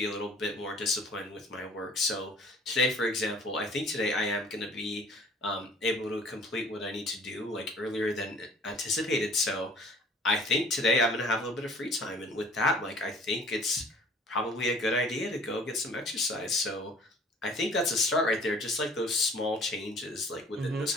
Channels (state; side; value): normal; both; correlation 0.51